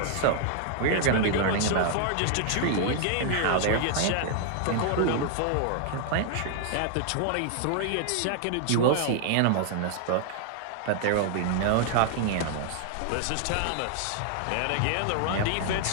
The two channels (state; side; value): different; both; correlation -0.01